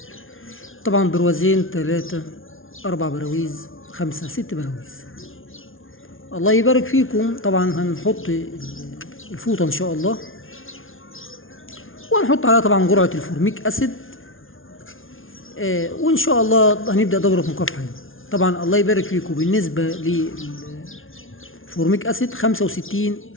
طبعا بروازين 3 4 براويز 5 6 براويز. الله يبارك فيكم. طبعا هنحط الفوطة ان شاء الله، وهنحط عليها طبعا جرعة الفورميك اسيد. وان شاء الله هنبدا دوره مكافحه يعني. طبعا الله يبارك فيكم، بالنسبه للفورميك اسيد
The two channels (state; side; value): late; right; 0.59 ms